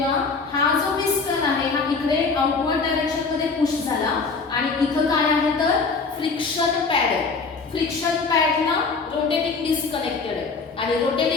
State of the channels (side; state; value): right; quieter; 4.5 dB